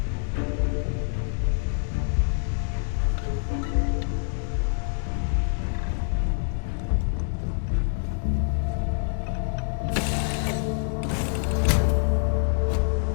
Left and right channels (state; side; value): silent; right; 61 dB below the other